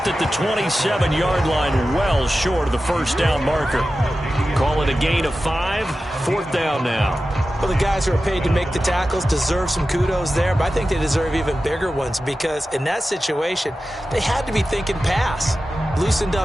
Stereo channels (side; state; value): both; normal; correlation 0.93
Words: at the 27-yard line, well short of the 1st down marker. Call it a gain of 5, 4th down now. Well, the guys who are paid to make the tackles deserve some kudos there, but I think they deserve even bigger ones because in that situation, they had to be thinking pass. Loosened